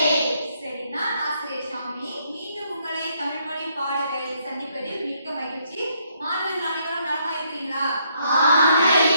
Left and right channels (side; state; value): both; inverted; correlation -0.72